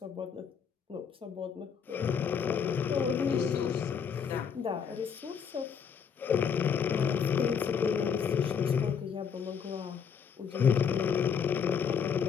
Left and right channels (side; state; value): right; quieter; 7.0 dB